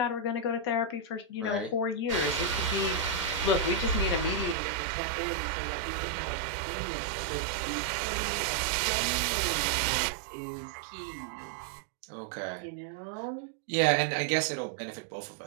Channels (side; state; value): left; drops out; at 4.5 s